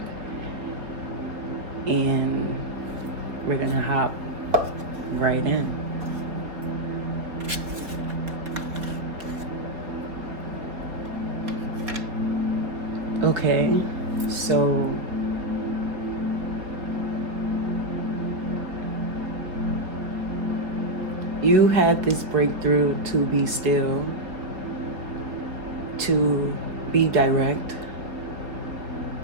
And we're gonna hop right in. Okay, so you had this breakthrough to be still, to be direct.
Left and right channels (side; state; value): left; late; 4.0 ms